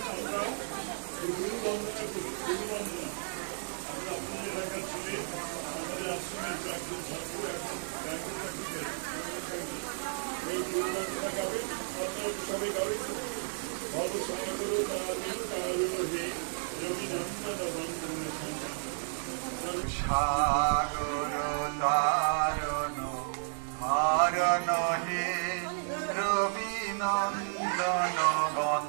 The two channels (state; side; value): silent; left; digital silence